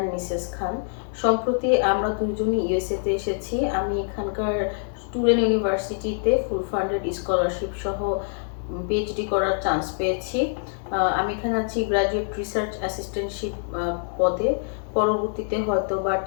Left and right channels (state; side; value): silent; right; 62 dB below the other